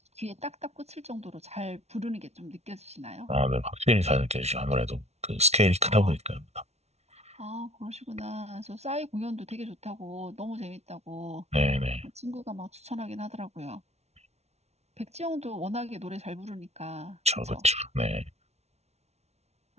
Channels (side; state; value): left; late; 0.31 ms